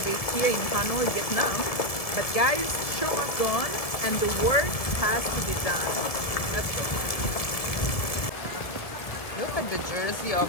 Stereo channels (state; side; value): late; right; 1.7 ms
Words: here in Hanoi, Vietnam. But guys, show must go on and the work has to be done. Let's go. Look at the jersey